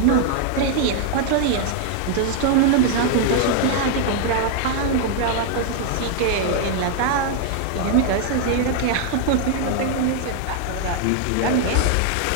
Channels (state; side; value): different; both; correlation 0.00